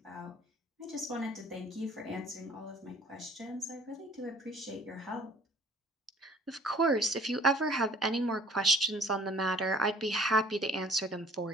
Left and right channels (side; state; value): both; normal; correlation 0.52